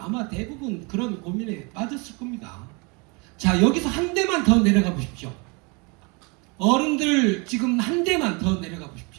대부분 그런 고민에 빠졌을 겁니다. 자, 여기서 한 대만 더 내려가 보십시오. 어른들 지금 한 대만 더 내려가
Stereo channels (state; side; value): quieter; left; 30.4 dB